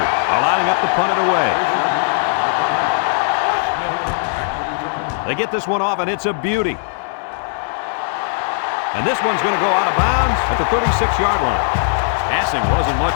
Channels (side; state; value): right; silent; digital silence